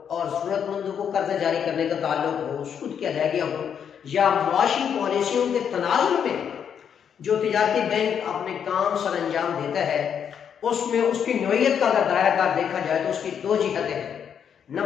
और ज़रूरतमंदों को कर्जा जारी करने का ताल्लुक हो, सूद की अदायगियाँ हो, या मुआशी पॉलिसियों के तनाज़ुर में जो तिजारती बैंक अपने काम सर अंजाम देता है, उसमें उसकी नौइयत का अगर दायरा देखा जाए तो उसकी दो जिहतें हैं।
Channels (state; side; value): quieter; right; 8.0 dB